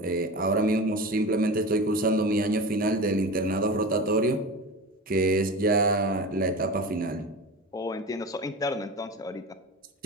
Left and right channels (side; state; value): both; normal; correlation 0.30